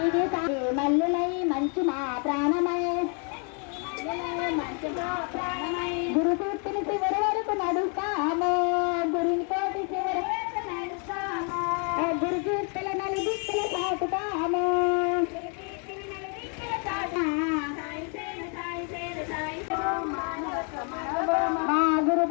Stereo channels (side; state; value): right; quieter; 38.7 dB